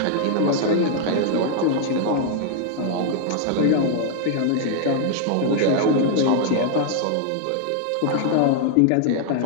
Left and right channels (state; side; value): different; both; correlation 0.00